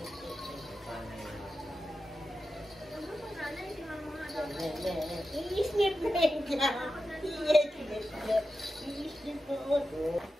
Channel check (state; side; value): normal; both; correlation 0.91